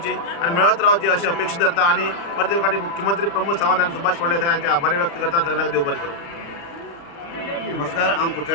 आनी मेळत रावची अशी अपेक्षा धरता. आनी प्रत्येक फावटी मुख्यमंत्री प्रमोद सावंत आनी सुभाष फळदेसाय हांचे आभार व्यक्त करता. सगळ्यांक देव बरें करूं. नमस्कार, हांव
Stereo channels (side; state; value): right; late; 35 ms